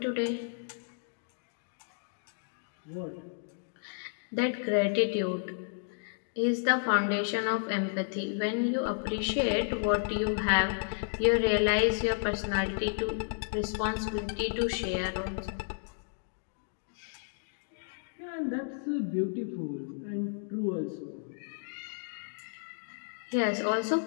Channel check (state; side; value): silent; right; digital silence